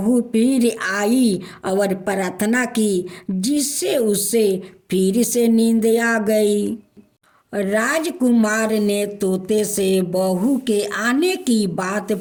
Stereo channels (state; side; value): identical; both; correlation 1.00